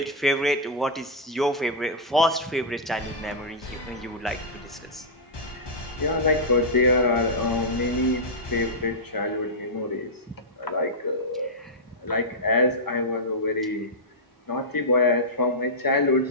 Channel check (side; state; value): both; normal; correlation -0.09